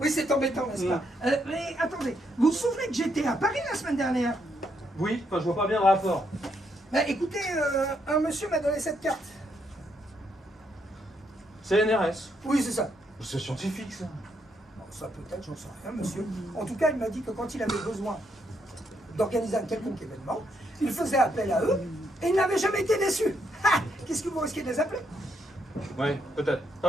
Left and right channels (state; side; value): normal; both; correlation 0.76